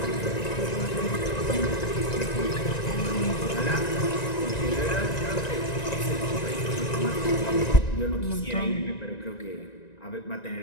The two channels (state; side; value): late; right; 1.9 ms